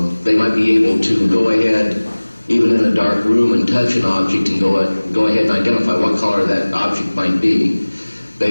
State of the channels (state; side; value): inverted; both; correlation -1.00